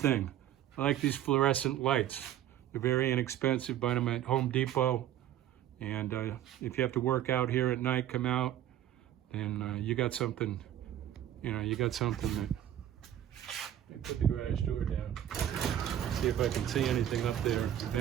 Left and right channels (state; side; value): quieter; left; 11.7 dB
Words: I like these fluorescent lights. They're very inexpensive. Buy them at Home Depot. And if you have to work out here at night, come out, then you got something, you know, you got something that... Let me put the garage door down. See if I can see anything up there of